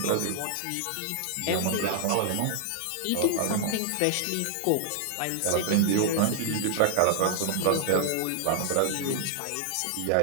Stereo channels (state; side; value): different; both; correlation 0.00